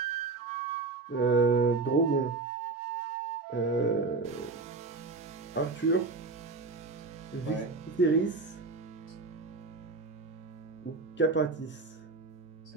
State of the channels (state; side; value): quieter; left; 3.9 dB